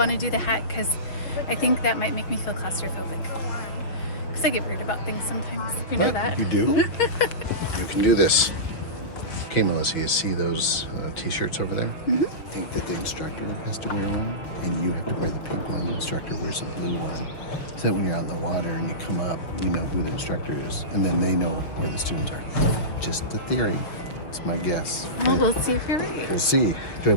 to do the hat because I think that might make me feel claustrophobic. Because I get worried about things sometimes. You know that? You do? You can do this. Okay, Melissa, you see those t-shirts over there? Mm-hmm. I think that the instructor has to wear one, and you have to wear the pink one. The instructor wears the blue one. So that when you're out in the water and you come up, you know who the instructor is, and then they know where the students are. Just a theory. It's my guess. Oh, we'll see if you're right. We'll see. Do I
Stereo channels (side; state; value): right; late; 5.9 ms